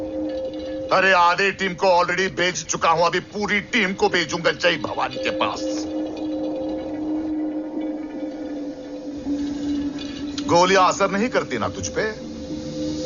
अरे आधे टीम को ऑलरेडी भेज चुका हूं, अभी पूरी टीम को भेजूंगा जय भवानी के पास। गोलियां असर नहीं करती ना तुझ पे?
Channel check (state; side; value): noise; left; rumble, 28 dB below the sound